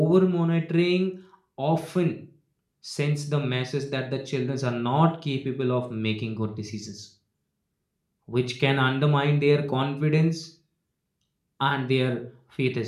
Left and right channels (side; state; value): both; identical; correlation 1.00